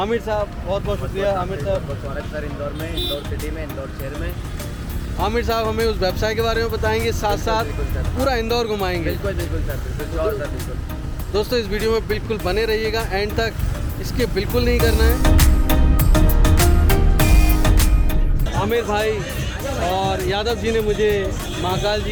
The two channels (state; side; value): identical; both; correlation 1.00